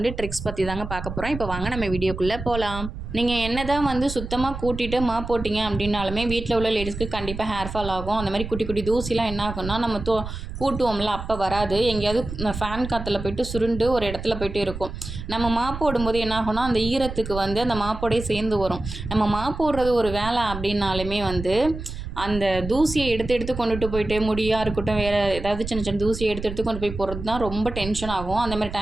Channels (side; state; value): right; noise; rumble, 8 dB below the sound